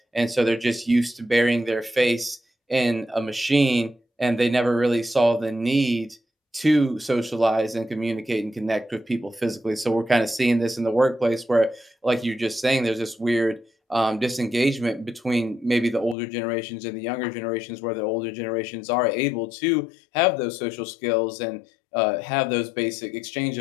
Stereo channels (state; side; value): drops out; right; at 16.2 s